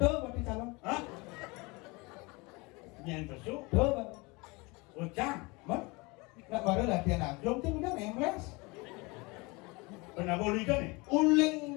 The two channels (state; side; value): quieter; right; 26.1 dB